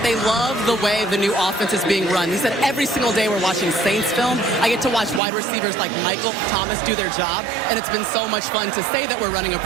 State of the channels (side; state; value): left; drops out; at 5.2 s